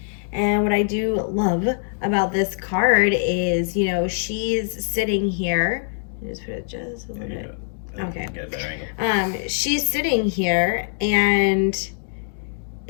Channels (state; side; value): silent; right; digital silence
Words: And what I do love about this card is, you know, she's sitting here. Just put it just a little bit. Okay. Get a better angle. She's sitting here, and